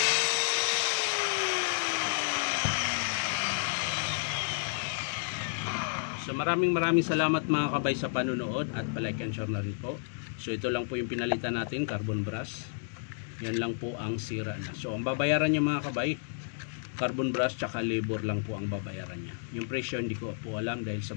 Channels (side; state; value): right; silent; digital silence